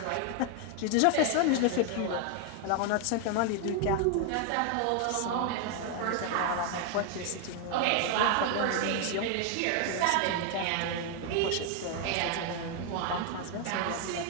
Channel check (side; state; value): both; different; correlation 0.00